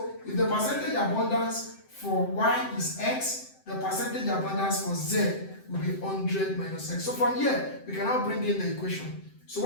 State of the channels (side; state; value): right; late; 7.7 ms